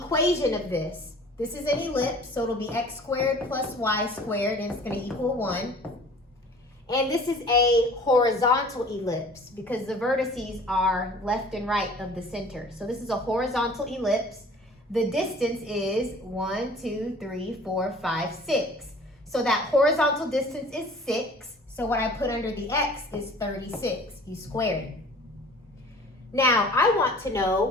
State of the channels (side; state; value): both; normal; correlation 0.47